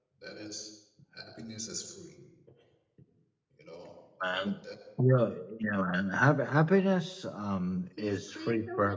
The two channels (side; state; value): both; identical; correlation 1.00